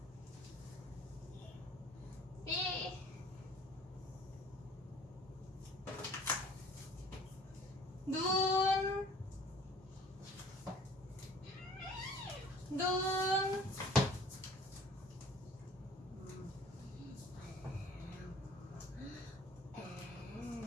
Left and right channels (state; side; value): normal; both; correlation 0.51